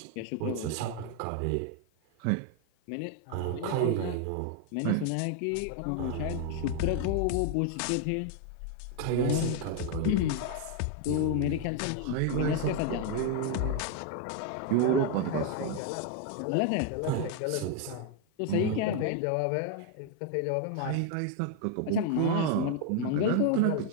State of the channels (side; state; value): both; different; correlation 0.00